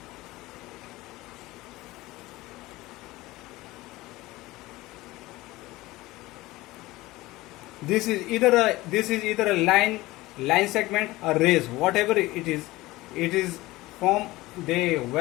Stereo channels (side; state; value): right; quieter; 19.2 dB